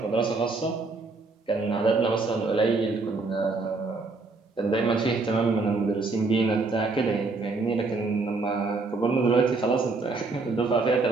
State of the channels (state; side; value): quieter; left; 3.8 dB